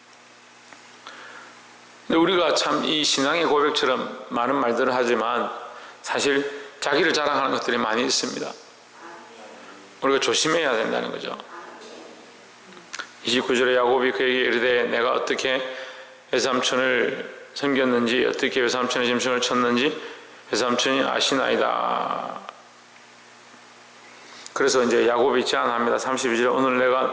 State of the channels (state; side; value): identical; both; correlation 1.00